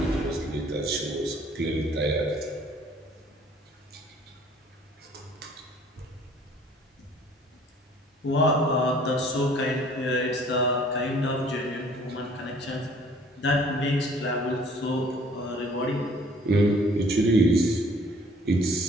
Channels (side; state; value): both; normal; correlation 0.55